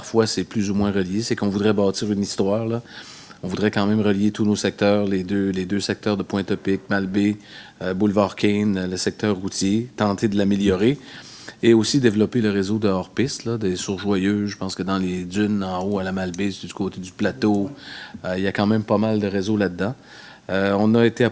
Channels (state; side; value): identical; both; correlation 1.00